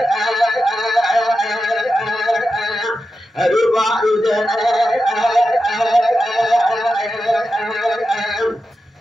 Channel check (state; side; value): normal; both; correlation 0.90